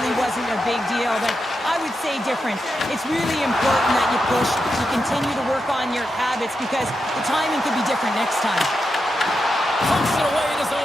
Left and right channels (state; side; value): normal; both; correlation 0.87